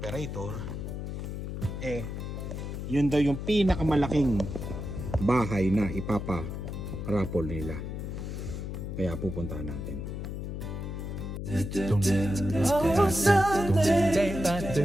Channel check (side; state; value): left; noise; hum, 6 dB below the sound